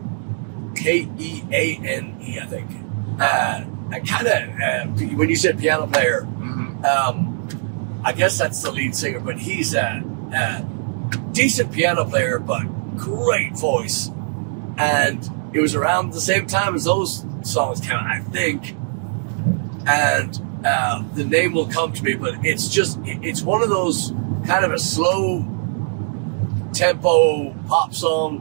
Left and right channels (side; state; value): left; silent; digital silence